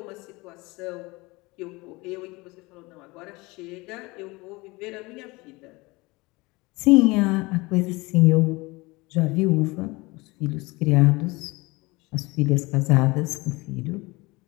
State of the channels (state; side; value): quieter; right; 23.4 dB